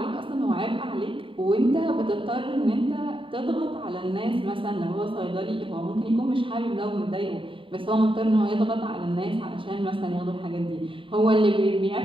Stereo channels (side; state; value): left; late; 0.25 ms